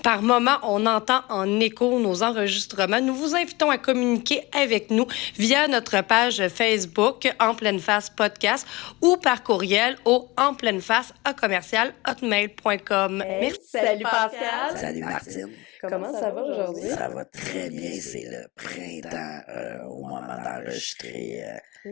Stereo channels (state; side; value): quieter; right; 22.3 dB